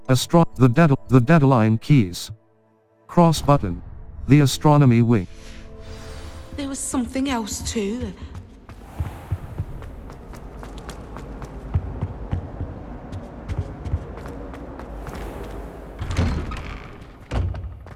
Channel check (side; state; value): both; identical; correlation 1.00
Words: The Deadline Keys. Cross Button. The Astronomy Wing. There was something else too.